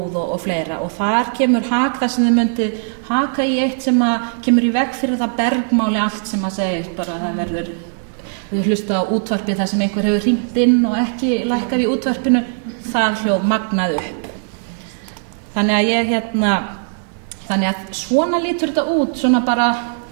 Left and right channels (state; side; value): silent; left; 66 dB below the other